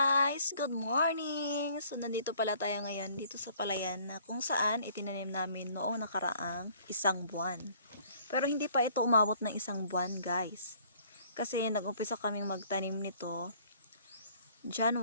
Good morning! So nandito pala tayo ngayon dito sa palayan na kung saan itinanim namin noong nakaraang isang buwan. Pero hindi pa ito umabot ng isang buwan guys. Kasi nag-umpisa kaming magtanim nito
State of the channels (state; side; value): inverted; both; correlation -0.57